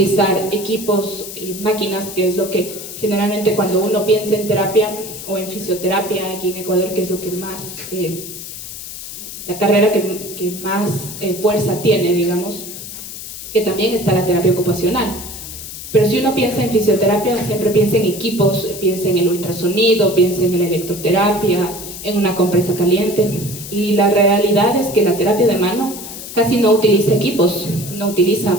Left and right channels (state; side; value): noise; left; hiss, 11 dB below the sound